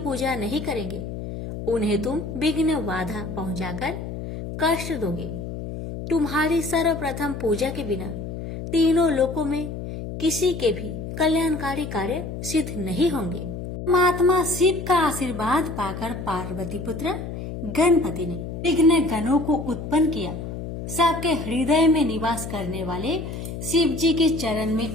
नहीं करेंगे, उन्हें तुम विघ्न बाधा पहुंचाकर कष्ट दोगे। तुम्हारी सर्वप्रथम पूजा के बिना तीनों लोकों में किसी के भी कल्याणकारी कार्य सिद्ध नहीं होंगे। परमात्मा शिव का आशीर्वाद पाकर पार्वती पुत्र गणपति ने विघ्न गणों को उत्पन्न किया। सबके हृदय में निवास करने वाले शिव जी के चरण में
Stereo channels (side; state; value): left; noise; hum, 7 dB below the sound